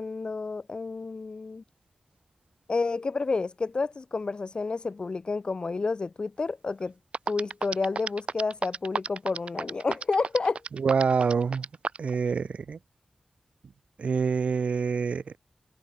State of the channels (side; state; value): both; normal; correlation 0.86